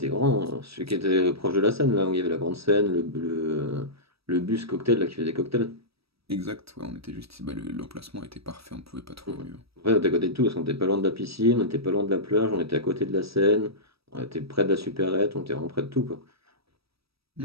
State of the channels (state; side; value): late; left; 0.77 ms